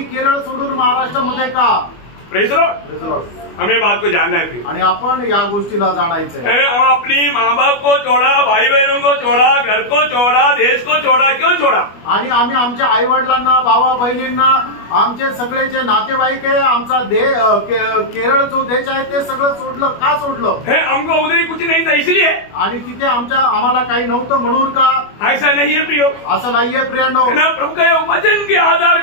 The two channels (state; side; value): late; right; 25 ms